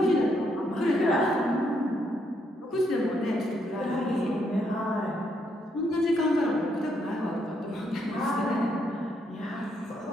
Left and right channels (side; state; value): both; normal; correlation 0.75